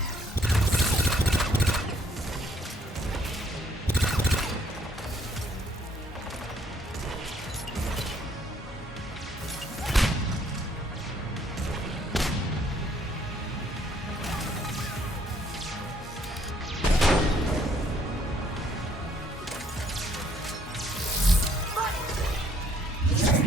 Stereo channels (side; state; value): both; normal; correlation 0.65